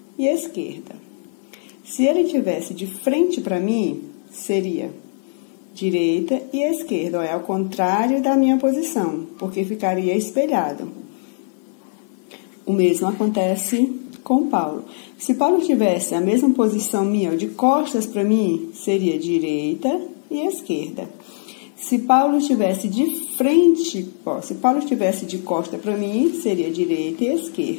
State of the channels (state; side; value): silent; right; digital silence